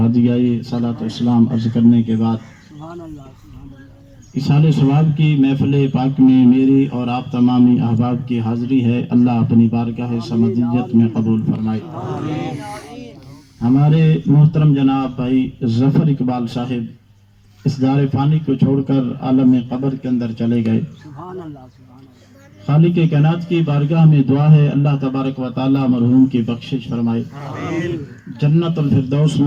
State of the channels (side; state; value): both; identical; correlation 1.00